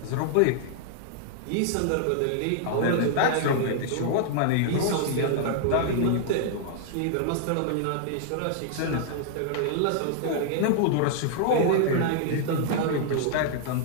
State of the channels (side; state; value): both; different; correlation -0.01